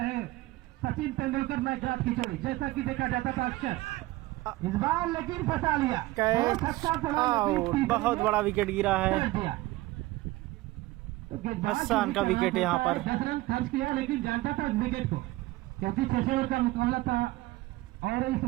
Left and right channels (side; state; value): left; quieter; 18.9 dB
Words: हैं सचिन तेंदुलकर मैच रात की चोरी, जैसा कि देखा जाता था अक्सर। इस बार लेकिन फंसा लिया, बहुत बड़ा विकेट गिरा है, हसन का विकेट यहाँ पर। 10 रन खर्च किया लेकिन जानता था इस विकेट को, क्योंकि 6 ओवर का मुकाबला था और इस